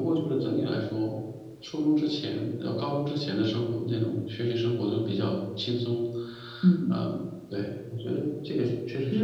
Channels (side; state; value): both; identical; correlation 1.00